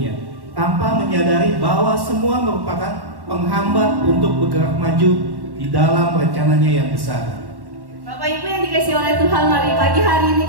tanpa menyadari bahwa semua merupakan penghambat untuk bergerak maju di dalam rencananya yang besar. Bapak Ibu yang dikasihi oleh Tuhan, mari pagi hari ini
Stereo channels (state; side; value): late; left; 1.1 ms